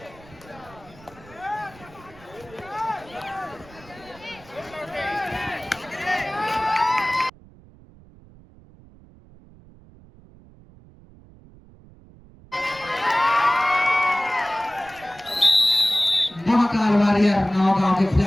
महाकाल वॉरियर नौगांव के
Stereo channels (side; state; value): right; noise; rumble, 23 dB below the sound